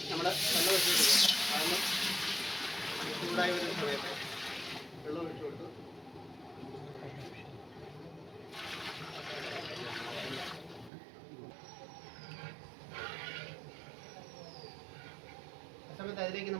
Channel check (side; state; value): left; drops out; at 10.9 s